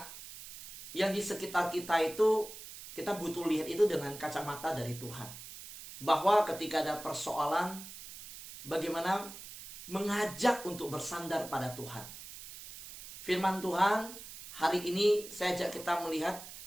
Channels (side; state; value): right; noise; hiss, 13 dB below the sound